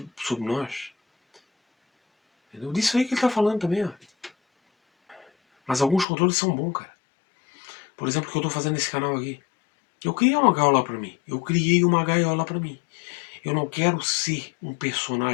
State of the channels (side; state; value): right; drops out; at 6.1 s